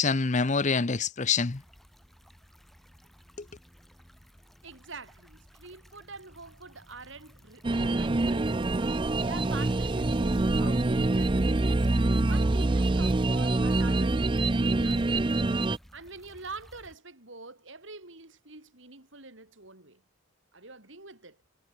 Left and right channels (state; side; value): normal; both; correlation 0.72